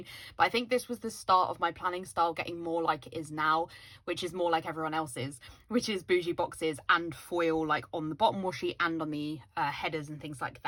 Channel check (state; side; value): identical; both; correlation 1.00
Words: but I think this was the start of my planning style getting more like it is now, which is more like everyone else's, which is bougie boxes and foil like on the bottom washi and on the headers and things like